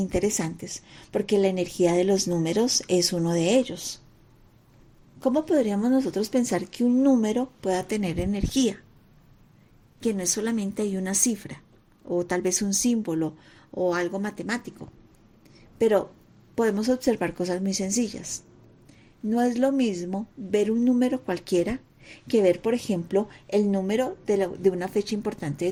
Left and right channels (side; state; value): both; identical; correlation 1.00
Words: porque la energía de los números es uno de ellos. ¿Cómo podríamos nosotros pensar que un número pueda tener energía? Que no es solamente hay una cifra, o tal vez un símbolo, o algo matemático. Pero podemos observar cosas muy sencillas. No es lo mismo ver un número cualquiera que ver, por ejemplo, el número de una fecha importante de